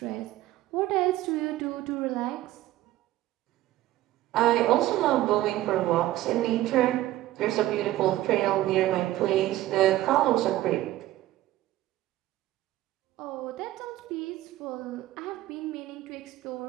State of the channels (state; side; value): quieter; left; 15.4 dB